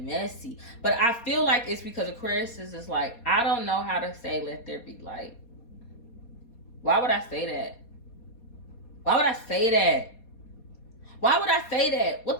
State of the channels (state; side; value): late; right; 4.2 ms